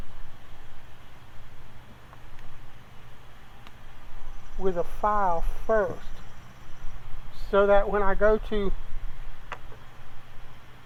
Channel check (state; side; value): identical; both; correlation 1.00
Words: with a file first. so that when I go to